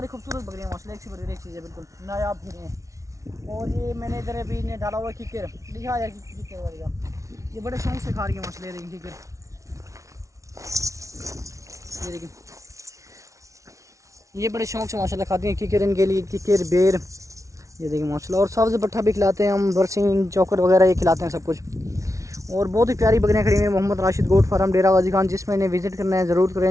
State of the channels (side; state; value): left; late; 0.15 ms